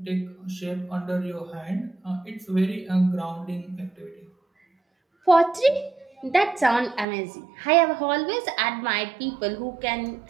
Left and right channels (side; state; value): left; drops out; at 7.1 s